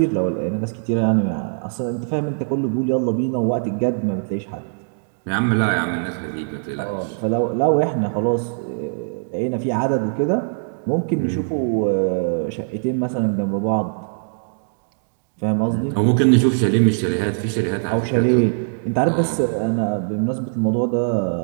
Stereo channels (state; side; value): silent; left; digital silence